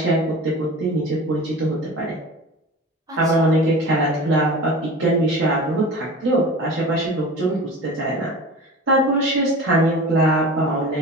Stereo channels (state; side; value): normal; both; correlation 0.35